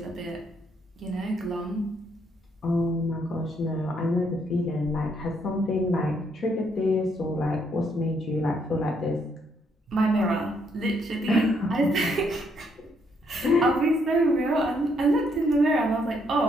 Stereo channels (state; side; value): normal; both; correlation 0.72